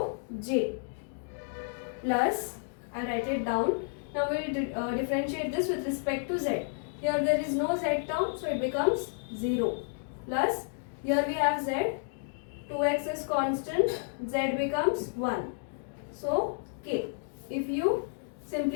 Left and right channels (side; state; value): right; silent; digital silence